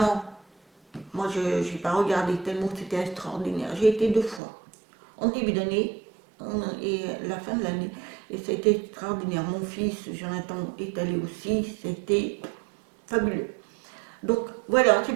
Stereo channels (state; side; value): drops out; left; at 4.4 s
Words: Moi, je n'ai pas regardé tellement c'était extraordinaire. J'ai été 2 fois. en début d'année et la fin de l'année. Et ça a été extraordinaire. Mon fils, Jonathan, est allé aussi. C'était fabuleux. Donc voilà,